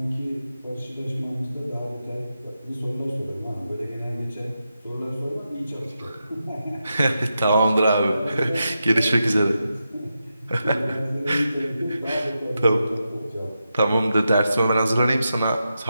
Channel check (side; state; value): both; inverted; correlation -0.88